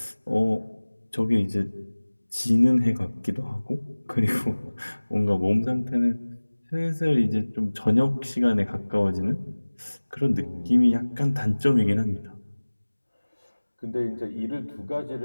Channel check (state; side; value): inverted; both; correlation -1.00